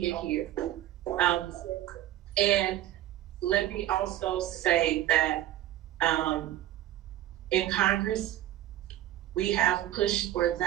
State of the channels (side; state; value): left; quieter; 13.7 dB